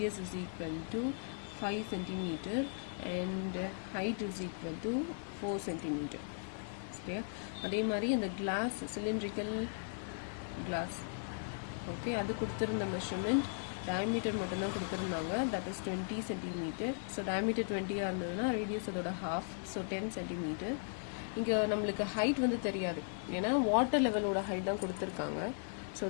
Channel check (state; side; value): silent; right; digital silence